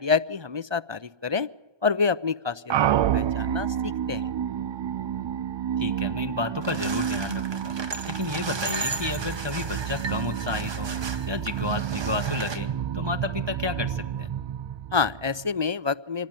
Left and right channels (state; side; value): late; left; 1.2 ms